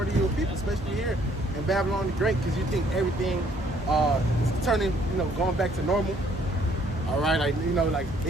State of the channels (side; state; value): both; normal; correlation 0.63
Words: of your people, especially here in Babylon the Great, because you think everything is turning, you know, going back to normal. All right, like you know, like